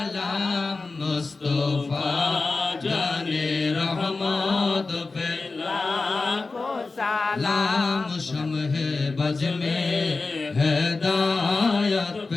মুস্তাফা জানে রহমত পে লাখো সালাম লাম শমহে বজ মে হেদায়ত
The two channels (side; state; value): right; quieter; 3.8 dB